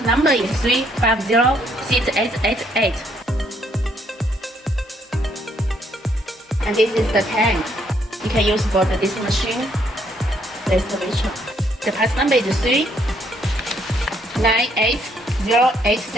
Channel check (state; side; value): normal; both; correlation 0.70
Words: number is 3506888. And this is the tank you can use for this machine, the excavator. The part number is